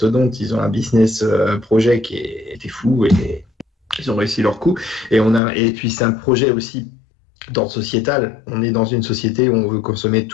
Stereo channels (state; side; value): drops out; right; at 5.4 s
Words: ils ont un business projet qui était fou et ils ont réussi leur coup. Et puis c'est un projet aussi d'ordre sociétal. On est dans une société où on veut consommer